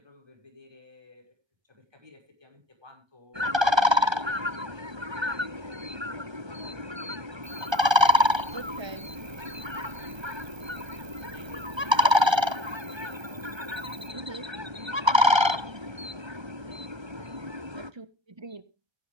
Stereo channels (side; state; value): left; late; 1.3 ms